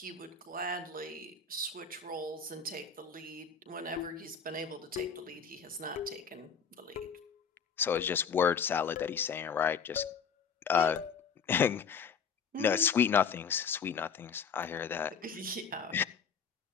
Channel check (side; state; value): right; quieter; 6.2 dB